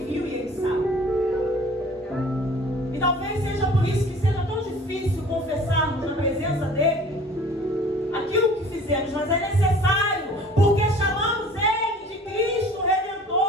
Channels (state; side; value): normal; both; correlation 0.48